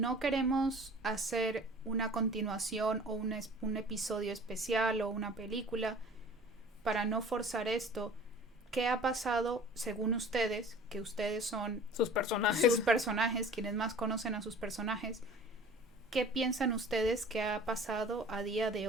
queremos hacer una continuación o un episodio especial o una película, para no forzar esto, ¿qué ha pasado según ustedes, que ustedes son sus personajes, quienes más conocen a sus personajes? ¿Qué piensan ustedes que ha pasado a día de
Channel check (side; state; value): both; normal; correlation 0.45